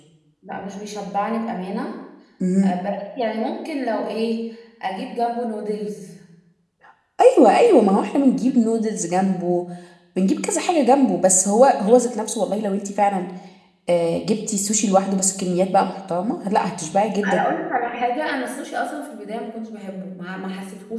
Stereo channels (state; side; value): identical; both; correlation 1.00